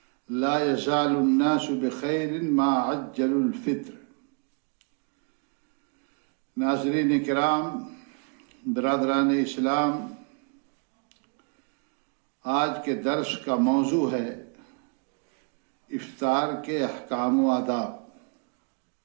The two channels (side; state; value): left; quieter; 38.9 dB